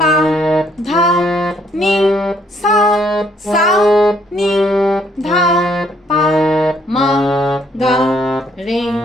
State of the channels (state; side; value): normal; both; correlation 0.67